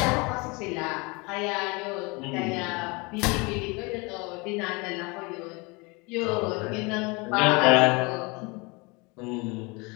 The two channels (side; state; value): right; quieter; 27.5 dB